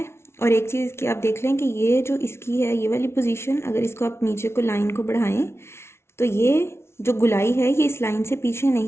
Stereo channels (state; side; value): late; right; 0.12 ms